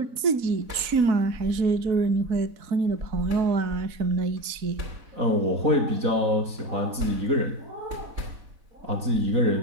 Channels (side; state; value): left; late; 4.1 ms